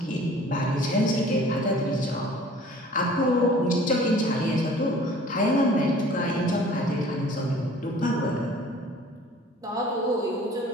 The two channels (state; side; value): normal; both; correlation 0.49